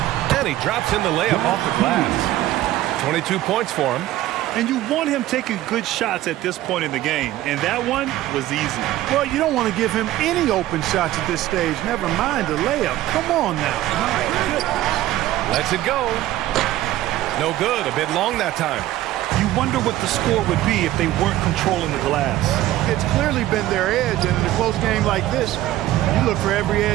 And he drops in the layup off the glass. 22 points for him. And you want him taking good shots at this point in the game. And that one was easy. Well, you don't want to give him any open shots at this stage. Never mind the layup. Come on now. Lets it go. No good. A bit long that time. You wonder what the score would be if they weren't controlling the glass. It's clearly been their edge, and in a close game like this, you look for every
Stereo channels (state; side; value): quieter; left; 14.8 dB